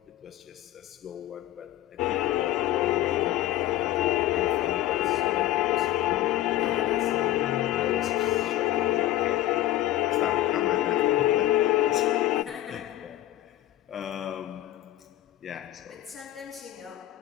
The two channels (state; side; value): quieter; right; 14.0 dB